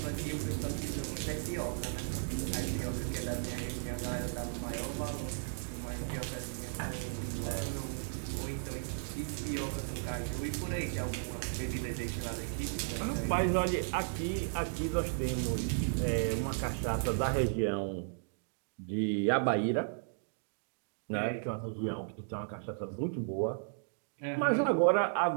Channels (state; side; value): silent; left; digital silence